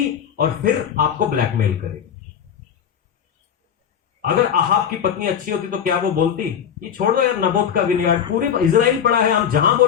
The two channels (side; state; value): right; quieter; 8.3 dB